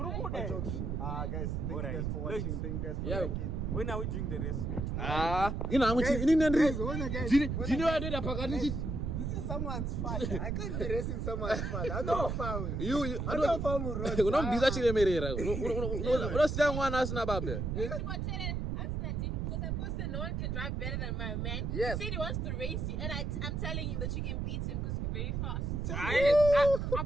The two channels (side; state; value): right; noise; rumble, 2 dB below the sound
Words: Guys, thank you guys for watching. Thank you guys for liking. When are we doing the race? Ina nangu ini nendri. Guys, Jini wadoda pakati. this is someone's father. I can't be racing someone's father. I know family. I know family. Unombiza chilemerera. Unosiya mwana asina baba. No one can drive better than my man. Yes. He said he wants to race you, and I'm telling him that you can beat him because you're very fast.